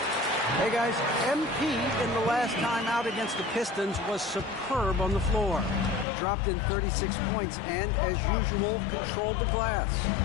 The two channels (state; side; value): drops out; right; at 6.1 s